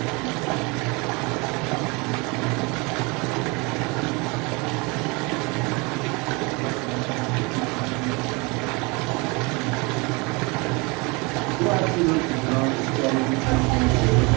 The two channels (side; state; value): left; quieter; 27.8 dB